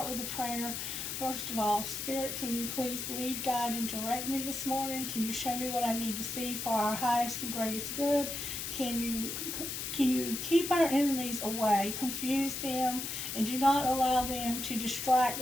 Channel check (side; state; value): left; noise; hiss, 4 dB below the sound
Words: with a prayer? First of all, Spirit, can you please lead, guide, and direct me this morning? Can you show me what I need to see for our highest and greatest good? Can you keep our enemies away, confuse them, and do not allow them to distract